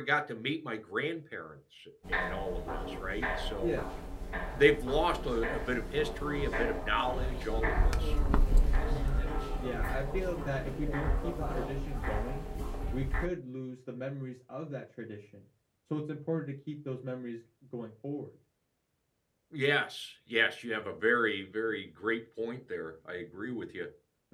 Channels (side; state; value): both; identical; correlation 1.00